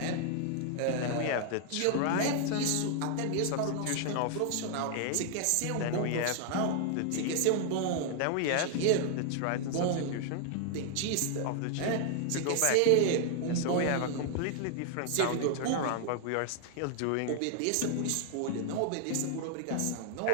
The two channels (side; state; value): both; different; correlation 0.00